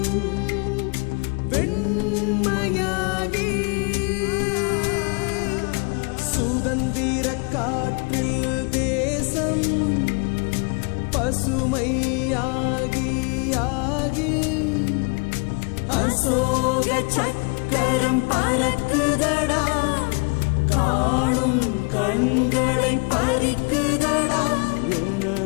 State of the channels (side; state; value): right; quieter; 33.3 dB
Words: வெண்மையாகி, சுதந்திர காற்றில் தேசம் பசுமையாகி ஆகி, அசோக சக்கரம் பறக்குதடா, காணும் கண்களை பறிக்குதடா.